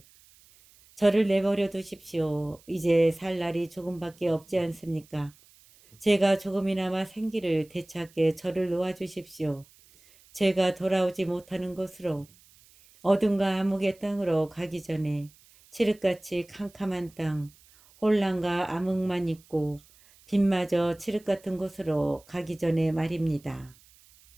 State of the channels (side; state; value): right; noise; hiss, 28 dB below the sound